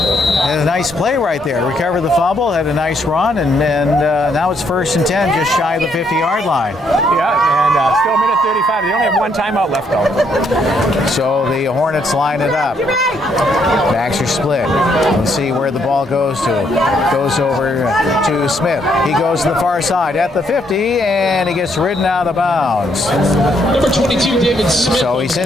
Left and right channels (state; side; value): normal; both; correlation 0.72